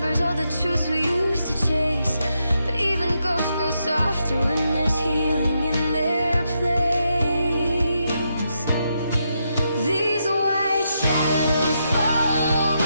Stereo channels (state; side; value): inverted; both; correlation -0.82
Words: all the truths we used to chase, but even ghosts grow softer when there's healing in their place. These white shadows follow